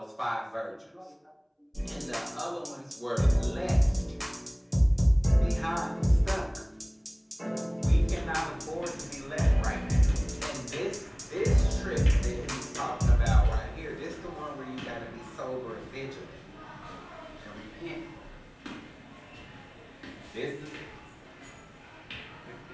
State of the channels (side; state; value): both; identical; correlation 1.00